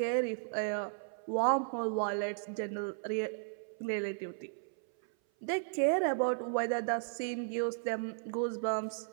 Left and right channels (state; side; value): silent; left; 54 dB below the other